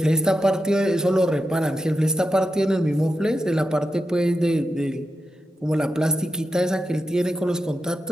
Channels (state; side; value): normal; both; correlation 0.89